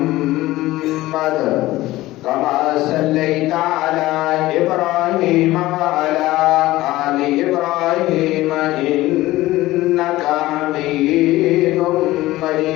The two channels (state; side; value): quieter; right; 17.3 dB